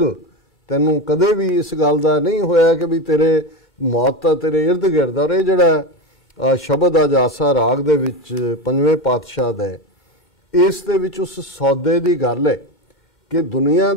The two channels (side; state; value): both; normal; correlation 0.19